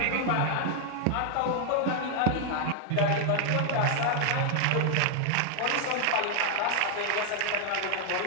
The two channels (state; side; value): different; both; correlation 0.00